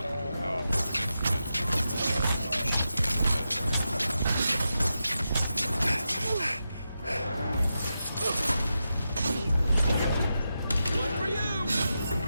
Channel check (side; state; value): both; inverted; correlation -0.89